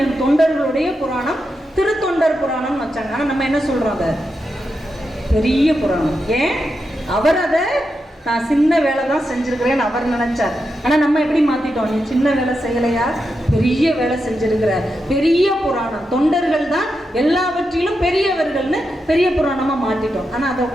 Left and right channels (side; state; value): both; normal; correlation 0.87